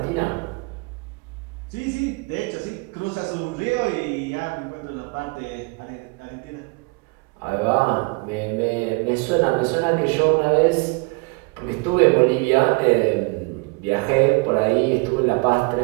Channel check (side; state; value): left; quieter; 29.8 dB